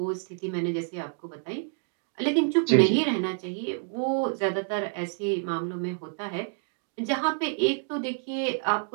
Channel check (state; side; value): silent; left; 59 dB below the other